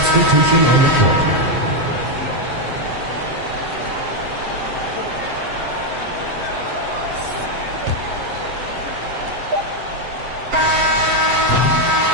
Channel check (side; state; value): left; late; 7.7 ms